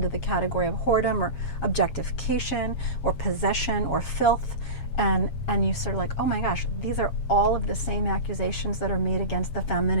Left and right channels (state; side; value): late; right; 8.6 ms